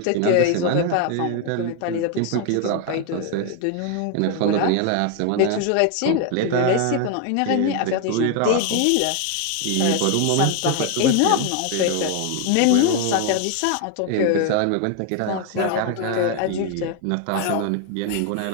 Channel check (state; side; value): different; both; correlation 0.01